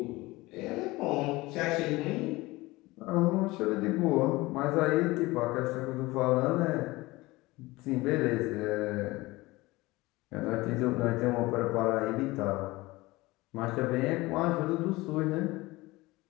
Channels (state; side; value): quieter; right; 20.8 dB